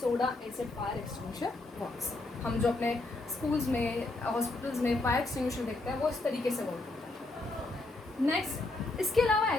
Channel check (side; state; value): right; quieter; 3.0 dB